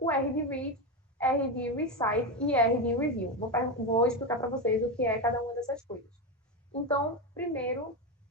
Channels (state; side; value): normal; both; correlation 0.14